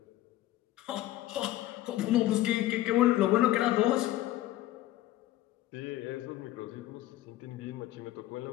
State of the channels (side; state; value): right; quieter; 15.1 dB